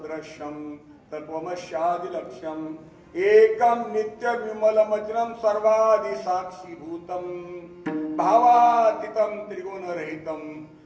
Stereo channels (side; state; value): both; identical; correlation 1.00